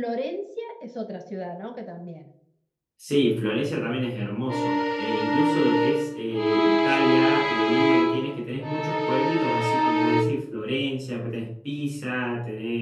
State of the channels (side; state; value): both; identical; correlation 1.00